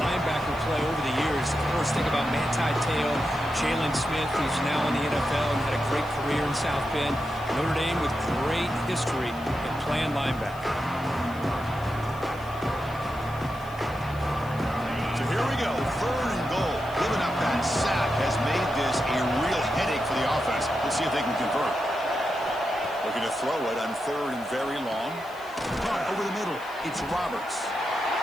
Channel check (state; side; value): noise; left; hiss, 23 dB below the sound